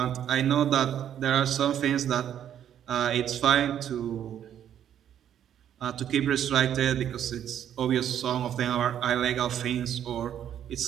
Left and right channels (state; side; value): quieter; left; 10.0 dB